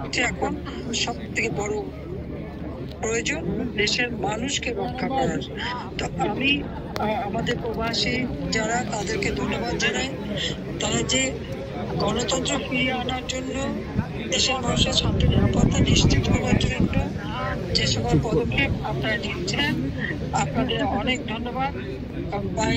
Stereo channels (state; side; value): identical; both; correlation 1.00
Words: এখন সব থেকে বড় প্রয়োজন, দেশের মানুষকে রক্ষা করার। তো আমি আমাদের প্রবাসী যারা, তাদেরকে ধন্যবাদ জানাই। তারা যে গণতন্ত্র ফিরিয়ে আনার জন্য, দেশের মানুষের শান্তি নিরাপত্তা নিশ্চিত করার জন্য যে সকল পদক্ষেপ আপনারা নিচ্ছেন, আপনাদের অনেক ধন্যবাদ।